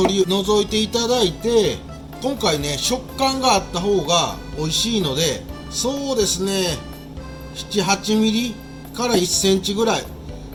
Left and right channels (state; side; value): identical; both; correlation 1.00